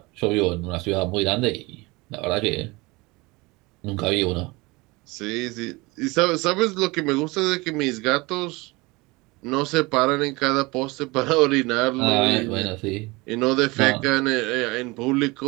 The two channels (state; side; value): quieter; left; 24.0 dB